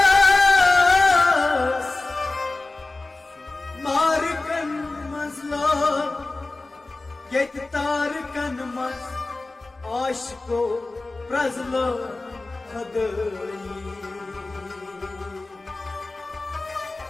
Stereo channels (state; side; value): quieter; right; 3.2 dB